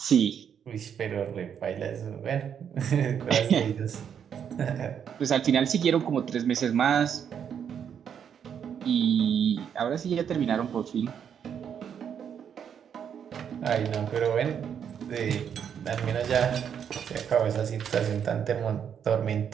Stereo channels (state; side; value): quieter; left; 8.1 dB